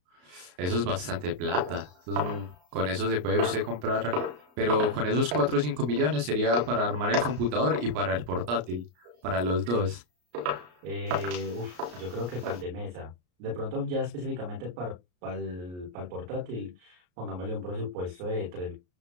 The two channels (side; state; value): left; late; 33 ms